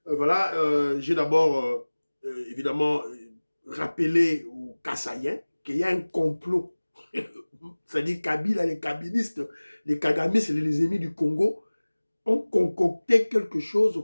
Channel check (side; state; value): both; inverted; correlation -1.00